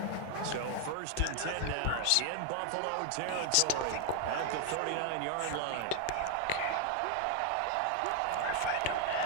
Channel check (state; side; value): different; both; correlation 0.00